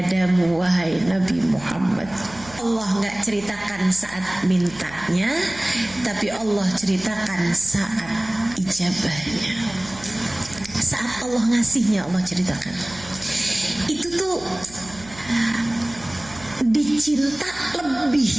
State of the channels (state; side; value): noise; right; hum, 19 dB below the sound